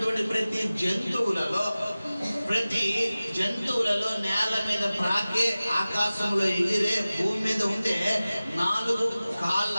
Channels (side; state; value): both; inverted; correlation -0.97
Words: ప్రతి జంతువులలో నేల మీద ప్రాకే, ఆకాశంలో ఎగిరే, భూమి మీద ఉండే 4 కాళ్ళ